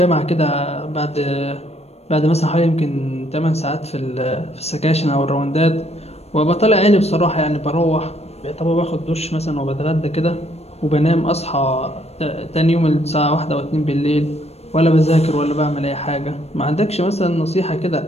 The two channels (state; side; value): late; right; 0.31 ms